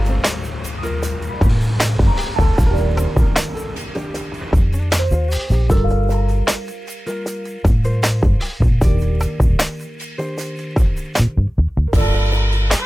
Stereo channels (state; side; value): normal; both; correlation 0.96